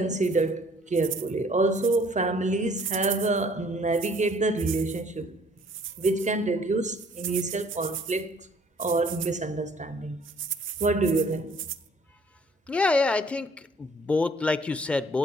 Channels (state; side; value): normal; both; correlation 0.58